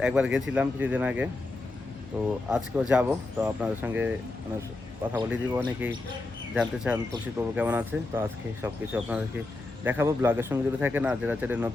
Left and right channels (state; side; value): quieter; right; 3.0 dB